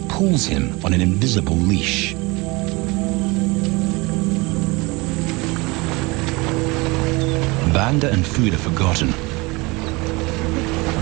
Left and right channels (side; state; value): left; quieter; 24.9 dB